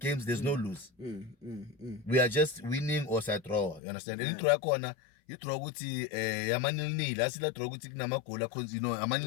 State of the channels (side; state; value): right; drops out; at 3.8 s